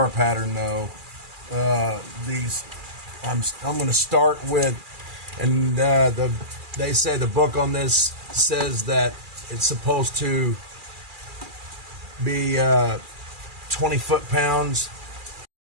pattern though. I'm going to start with, and they say the book on this says that it's supposed to be 20 foot-pounds.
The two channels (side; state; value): left; late; 2.4 ms